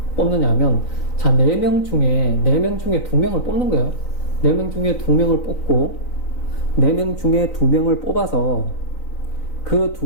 뽑느냐면, 자, 4명 중에 2명을 뽑는 거예요. 4명 중에 2명을 뽑고, 4명 중에 2명을 뽑아서 그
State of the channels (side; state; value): right; late; 3.9 ms